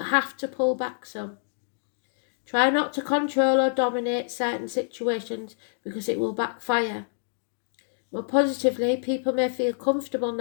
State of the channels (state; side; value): silent; right; digital silence